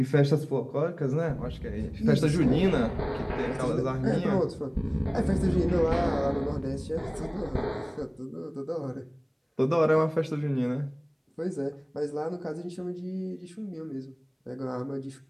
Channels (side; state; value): both; identical; correlation 1.00